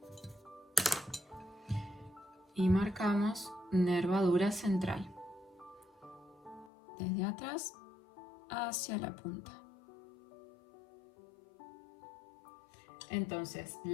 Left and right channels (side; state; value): right; drops out; at 6.7 s